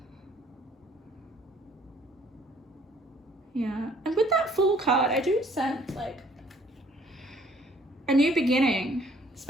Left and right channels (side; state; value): both; normal; correlation 0.59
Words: Yeah. And with that Fool card, I do sense like a new beginning,